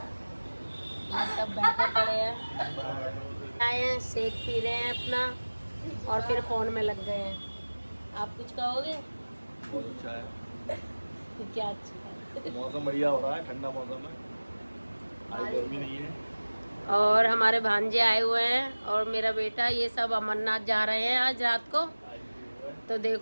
ये सब बैठे पड़े हैं, आए हैं, शेक पी रहे हैं अपना और फिर फोन में लग गए हैं। आप कुछ कहोगे? बहुत अच्छा है, क्या अच्छा है? मौसम बढ़िया हो रहा है, ठंडा मौसम है, आज गर्मी नहीं है। और हमारे भांजे आए हुए हैं और मेरा बेटा, ये सब अमरनाथ जा रहे हैं आज रात को। तो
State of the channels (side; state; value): both; inverted; correlation -1.00